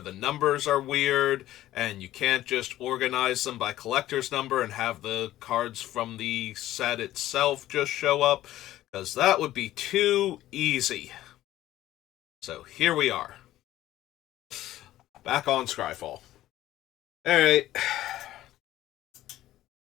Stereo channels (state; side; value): quieter; right; 14.4 dB